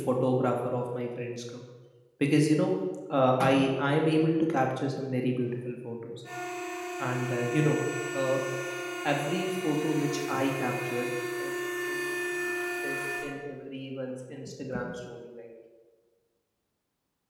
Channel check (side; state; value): both; identical; correlation 1.00